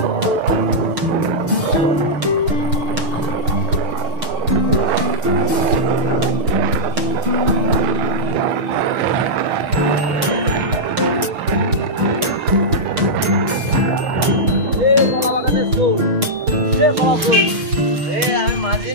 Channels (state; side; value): late; left; 6.5 ms